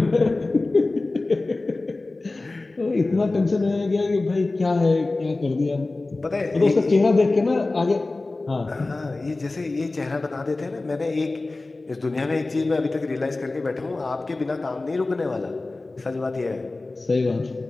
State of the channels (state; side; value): quieter; right; 3.2 dB